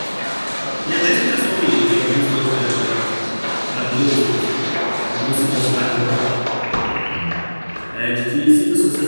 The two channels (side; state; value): both; inverted; correlation -1.00